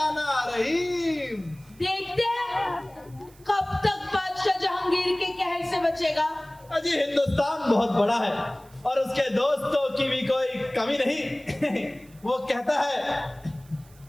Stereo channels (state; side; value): noise; right; hiss, 27 dB below the sound